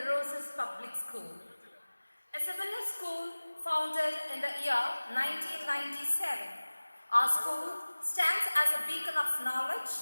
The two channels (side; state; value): both; inverted; correlation -1.00